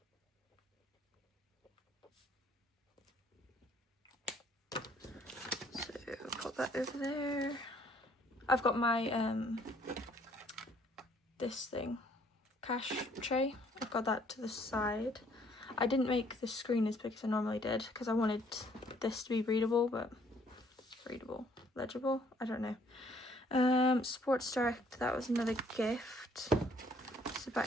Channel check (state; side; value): normal; both; correlation 0.63